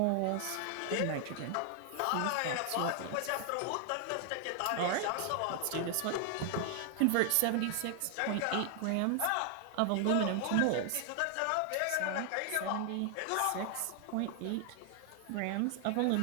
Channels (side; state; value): both; different; correlation 0.00